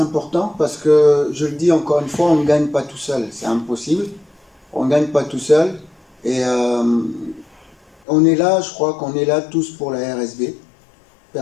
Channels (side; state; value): right; drops out; at 8.0 s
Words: important parce que, je le dis encore une fois, on ne gagne pas tout seul. C'est impossible. On ne gagne pas tout seul. Et on est là, je crois qu'on est là tous pour la RSB.